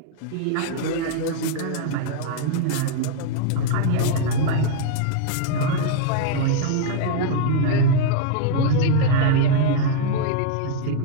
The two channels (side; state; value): both; different; correlation 0.00